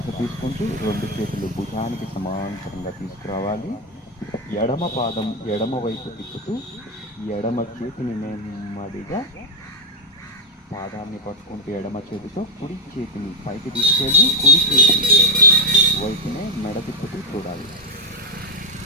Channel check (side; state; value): both; normal; correlation 0.02